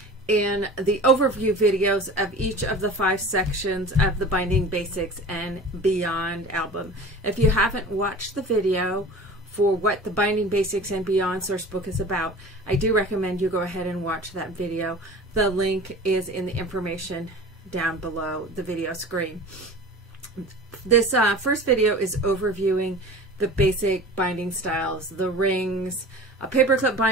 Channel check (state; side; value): normal; both; correlation 0.38